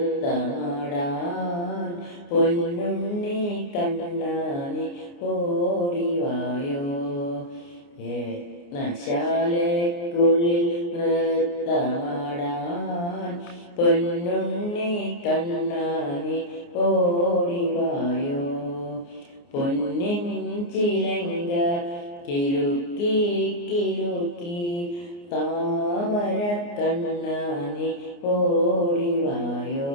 പൊന്നുണ്ണി കണ്ണാനി ഓടിവായോ. യജ്ഞശാലയ്ക്കുള്ളിൽ നൃത്തമാടാൻ പൊന്നുണ്ണി കണ്ണാനി ഓടിവായോ. പൊന്നിൻ ചിലങ്ക കിലുക്കി കിലുക്കി താമര കണ്ണാനി ഓടിവായോ.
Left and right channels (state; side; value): late; right; 29 ms